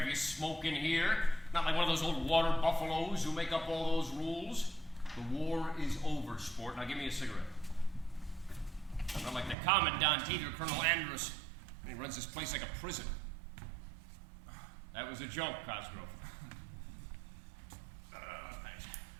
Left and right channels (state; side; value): drops out; left; at 9.6 s